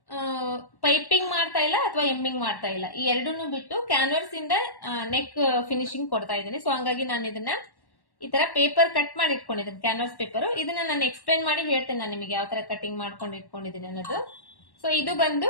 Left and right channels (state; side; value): late; right; 1.1 ms